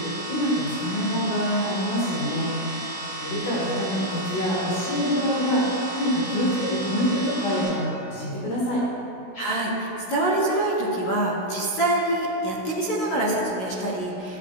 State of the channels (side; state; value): right; late; 16 ms